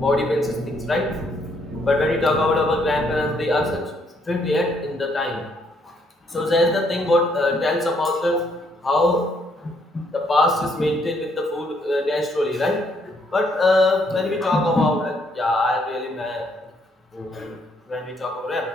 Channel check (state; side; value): normal; both; correlation 0.70